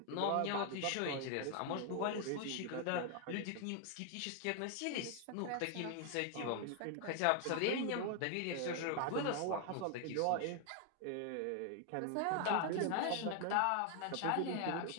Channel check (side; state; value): both; different; correlation 0.00